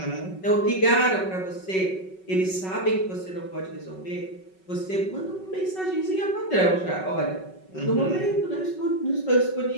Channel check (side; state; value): right; late; 5.3 ms